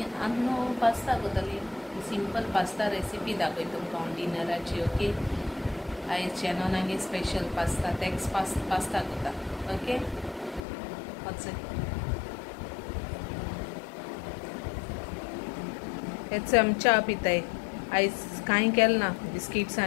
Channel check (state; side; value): drops out; right; at 10.6 s